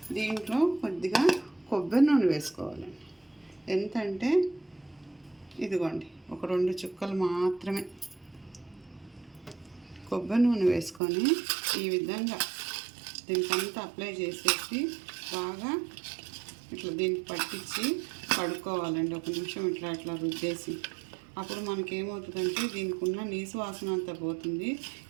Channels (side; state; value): left; drops out; at 11.0 s